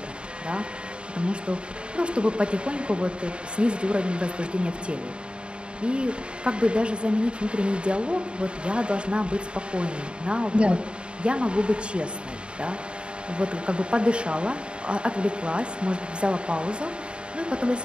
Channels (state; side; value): late; left; 0.054 ms